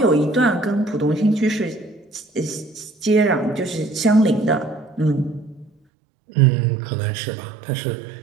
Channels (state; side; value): drops out; left; at 5.7 s